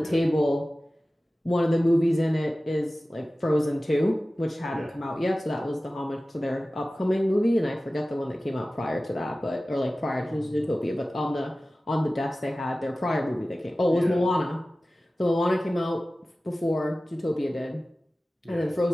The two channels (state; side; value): normal; both; correlation 0.96